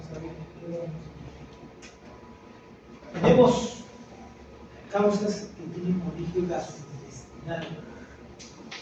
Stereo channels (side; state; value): both; identical; correlation 1.00